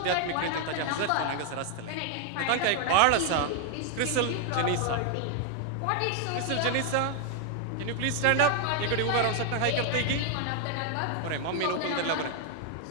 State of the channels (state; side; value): different; both; correlation 0.00